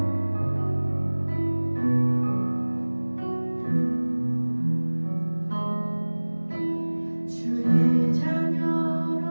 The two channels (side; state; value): both; inverted; correlation -1.00